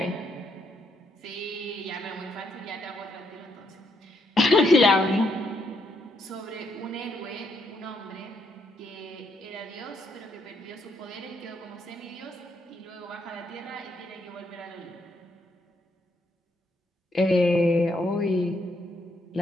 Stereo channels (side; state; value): both; normal; correlation 0.75